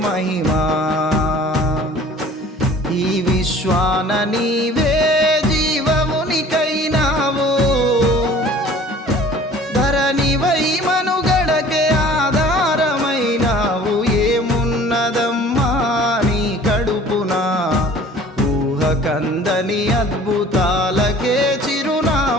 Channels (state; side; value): normal; both; correlation 0.48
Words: మహిమా. ఈ విశ్వాన నీవే జీవమునికైనావు, ధరణివై మనుగడకే ఆధారమైనావు. ఏమున్నదమ్మా నీ కడుపున, ఊహకందని అద్భుతాలకే